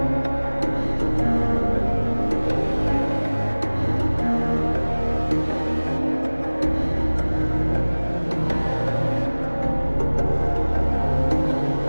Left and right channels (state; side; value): inverted; both; correlation -1.00